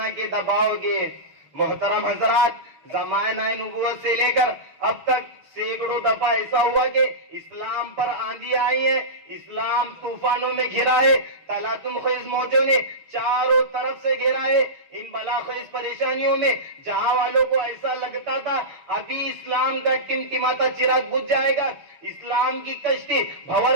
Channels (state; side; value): late; left; 6.8 ms